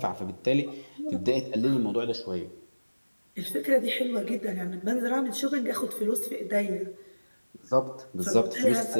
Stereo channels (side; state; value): both; inverted; correlation -1.00